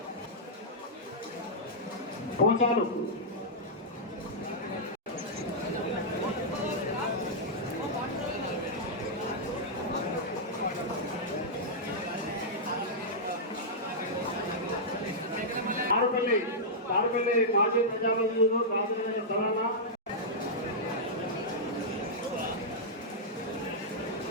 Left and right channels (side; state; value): both; normal; correlation -0.10